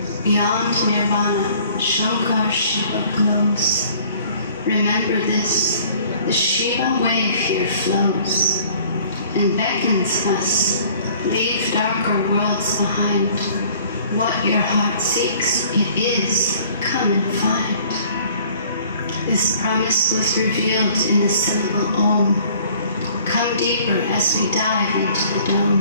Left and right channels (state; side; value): inverted; both; correlation -0.54